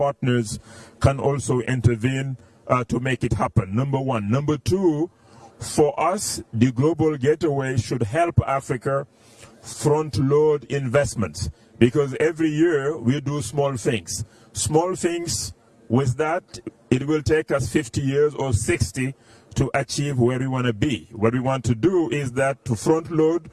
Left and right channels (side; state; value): both; identical; correlation 1.00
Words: can also intervene to make it happen, number one. Number two, for us, the global getaway should help Africa front-load investments, because every year we do small things. Small things, with that, it will take us 50 years or 60 to achieve where we want to be. What we want to do is that to front-load